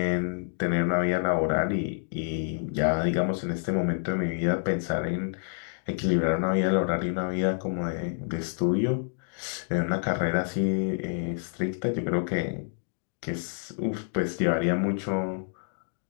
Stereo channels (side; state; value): right; silent; digital silence